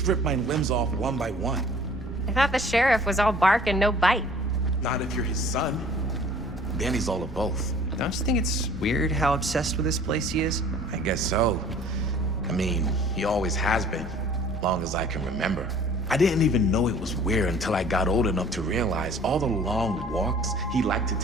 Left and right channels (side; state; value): both; normal; correlation 0.51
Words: rip my limbs off one by one. I thought the sheriff was all bark and no bite. Not if you're his son. Then he's all of both. Don't you think it's weird how obsessed with this place he is? I guess so. I mean, he always has been, long as I can remember. I didn't even know it was weird until I got old enough to realize all the long walks he liked to